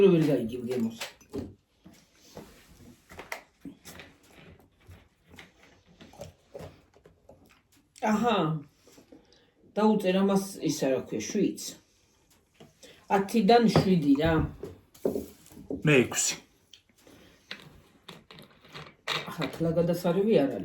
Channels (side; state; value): both; identical; correlation 1.00